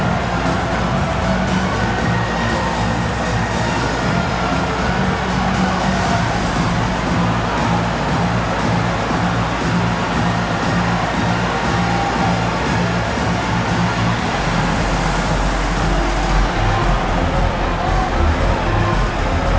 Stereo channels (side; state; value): both; identical; correlation 1.00